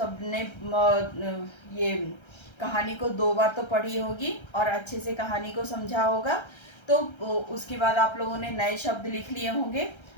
ये कहानी को 2 बार तो पढ़ी होगी और अच्छे से कहानी को समझा होगा। तो उसके बाद आप लोगों ने नए शब्द लिख लिए होंगे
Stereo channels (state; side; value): late; right; 1.3 ms